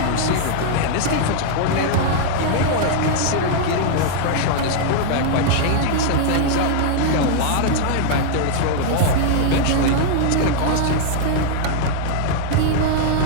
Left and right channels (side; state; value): both; different; correlation -0.01